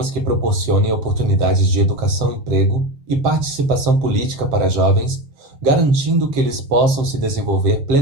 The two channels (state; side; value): late; left; 7.5 ms